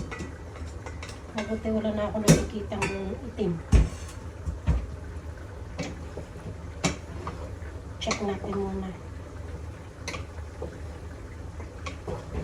Mabuti wala na ako nakikita ng itim. Check natin muna.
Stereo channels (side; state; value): both; identical; correlation 1.00